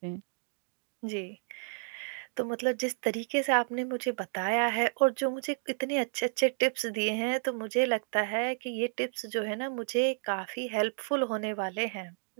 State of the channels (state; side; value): silent; left; digital silence